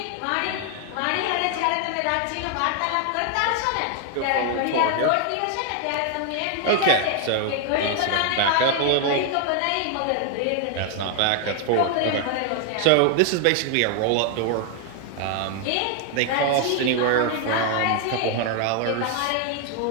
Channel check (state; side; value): different; both; correlation 0.00